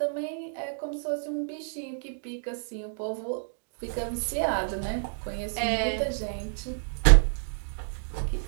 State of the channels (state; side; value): silent; left; digital silence